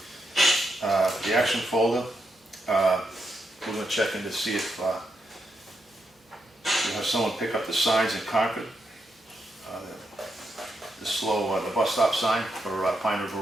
The action folder, we're gonna check in to see if we have someone pick up the signs in Concord. The bus stop sign for Pine River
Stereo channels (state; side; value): normal; both; correlation 0.82